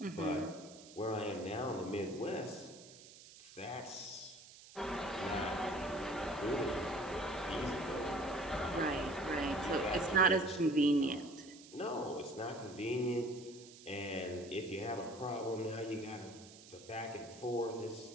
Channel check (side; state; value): right; noise; hiss, 19 dB below the sound